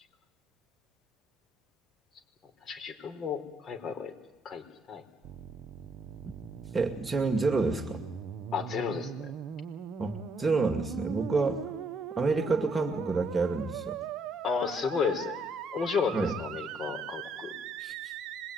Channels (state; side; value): normal; both; correlation 0.70